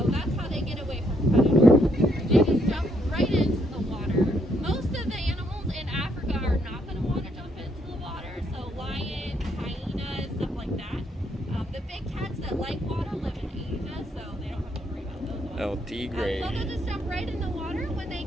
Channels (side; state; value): both; normal; correlation 0.73